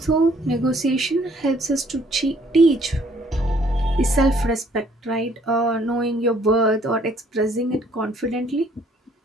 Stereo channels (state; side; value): normal; both; correlation 0.62